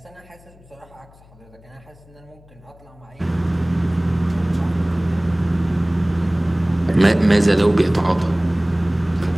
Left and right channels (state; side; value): noise; left; hum, 26 dB below the sound